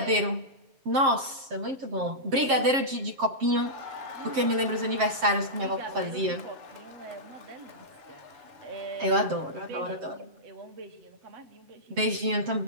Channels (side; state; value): left; late; 7.5 ms